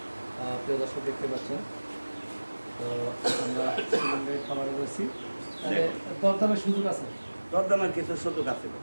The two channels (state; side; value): inverted; both; correlation -1.00